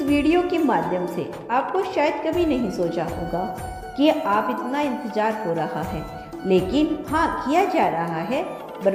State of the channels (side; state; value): both; identical; correlation 1.00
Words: वीडियो के माध्यम से आपको शायद कभी नहीं सोचा होगा कि आप इतना इंतजार हो रहा है, लेकिन हाँ, किया जा रहा है।